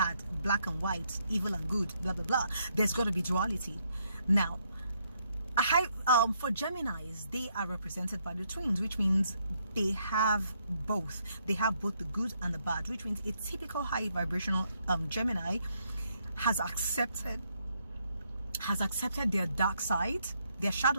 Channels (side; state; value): both; inverted; correlation -0.74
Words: black and white, evil and good, blah blah blah. There's got to be duality. Now, for Geminis, they are represented by the twins, which means they have both. They have both the good and the bad, which means a typical high vibrational Gemini has accepted their dark side, their